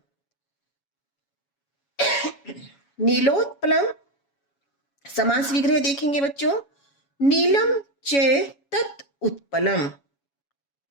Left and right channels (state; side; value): late; right; 7.2 ms